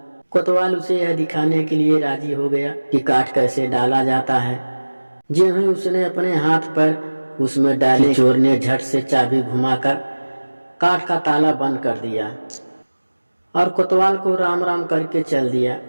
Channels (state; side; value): inverted; both; correlation -1.00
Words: कोतवाल उसे यह दिखाने के लिए राजी हो गया कि काठ कैसे डाला जाता है। ज्यों ही उसने अपने हाथ पर उसमें डाले, चोर ने झट से चाबी घुमाकर काठ का ताला बंद कर दिया और कोतवाल को राम राम करके चल दिया।